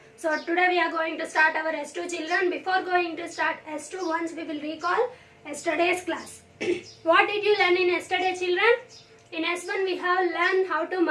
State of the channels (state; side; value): identical; both; correlation 1.00